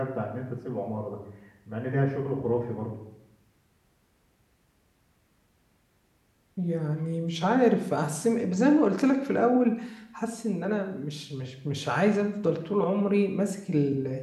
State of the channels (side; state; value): both; identical; correlation 1.00